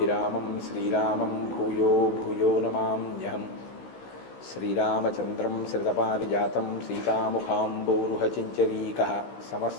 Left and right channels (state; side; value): late; right; 16 ms